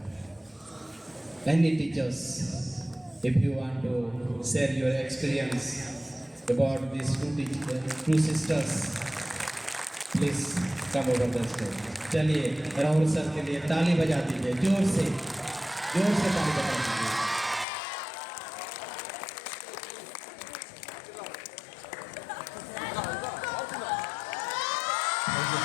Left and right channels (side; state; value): right; drops out; at 17.7 s